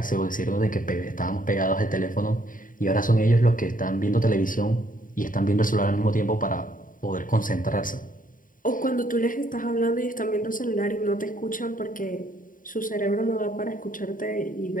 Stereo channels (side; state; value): right; late; 0.39 ms